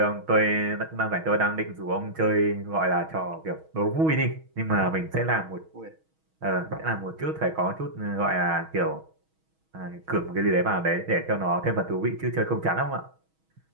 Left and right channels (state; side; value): late; left; 6.3 ms